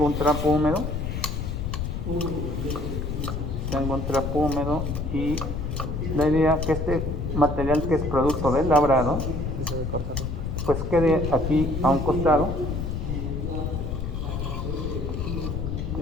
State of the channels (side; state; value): left; noise; rumble, 3 dB below the sound